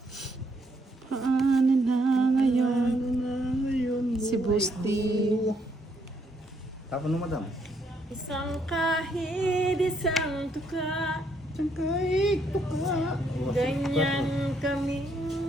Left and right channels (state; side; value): normal; both; correlation 0.72